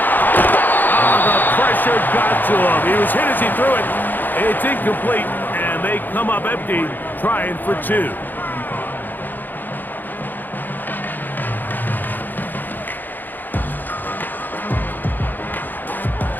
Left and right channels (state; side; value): late; right; 0.088 ms